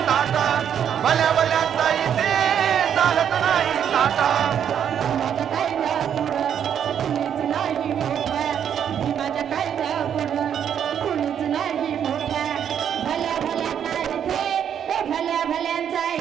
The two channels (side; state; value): left; quieter; 8.8 dB